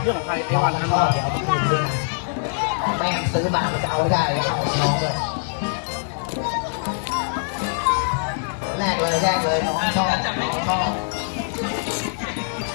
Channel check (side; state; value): right; silent; digital silence